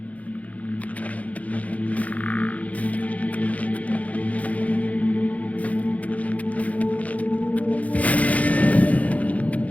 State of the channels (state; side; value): late; right; 0.069 ms